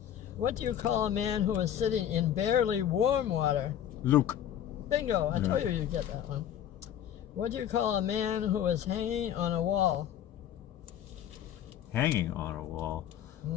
What do you call a man who is sitting in barely warm water? Luke. Bingo! I told you you'd get that one. What do you call a man who is hanging on a wall? Hanging on a wall.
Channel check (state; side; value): quieter; right; 10.3 dB